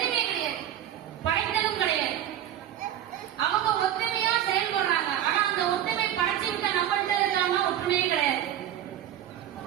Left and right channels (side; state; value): left; quieter; 11.1 dB